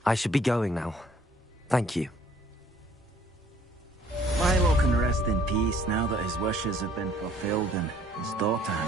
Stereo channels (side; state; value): both; normal; correlation 0.60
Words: I should be going now. Thank you. Milo can rest in peace now that his wishes have been fulfilled and his daughter